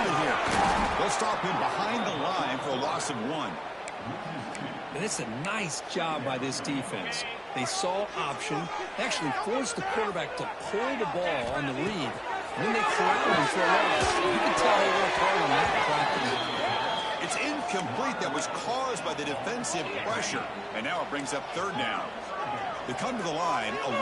it here. They'll stop him behind the line for a loss of 1. And it's a nice job by this defense. They saw option, actually forced the quarterback to pull the ball on the read, and then they corralled him for a loss. You can tell they worked hard on that practice. It's incomplete. That was caused by the defensive pressure. And now it brings up 3rd down. They come to the line, a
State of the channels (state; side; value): identical; both; correlation 1.00